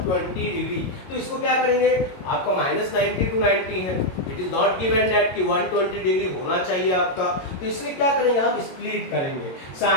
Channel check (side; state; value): right; late; 22 ms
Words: डिग्री। तो इसको क्या करेंगे, आपका -90 to 90 है, it is not given that कि 120 डिग्री होना चाहिए आपका, तो इसलिए क्या करेंगे, हम स्प्लिट करेंगे,